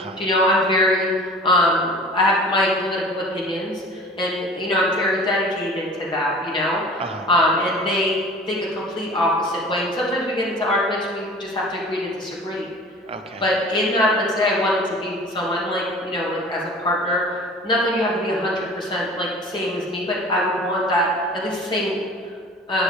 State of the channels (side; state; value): both; normal; correlation 0.43